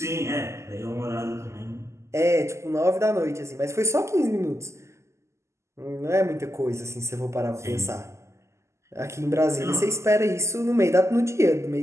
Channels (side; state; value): left; late; 0.13 ms